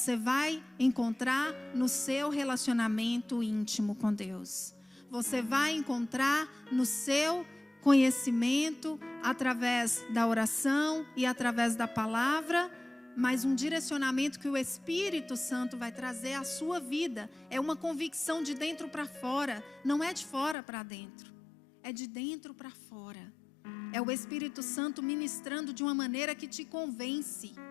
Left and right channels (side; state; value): right; drops out; at 20.6 s